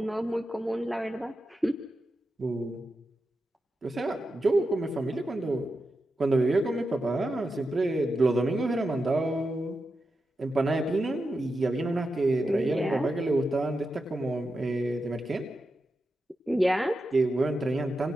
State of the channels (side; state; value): both; normal; correlation 0.89